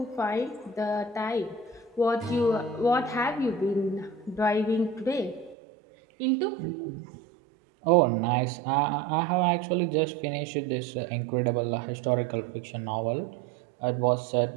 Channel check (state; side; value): drops out; left; at 5.6 s